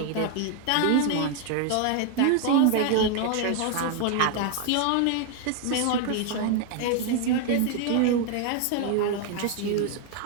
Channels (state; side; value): different; both; correlation 0.01